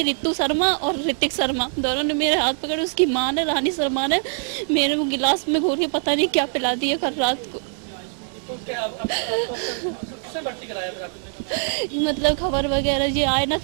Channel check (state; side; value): silent; left; 56 dB below the other